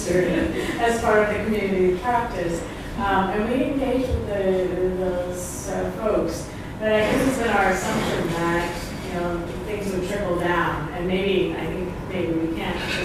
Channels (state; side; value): identical; both; correlation 1.00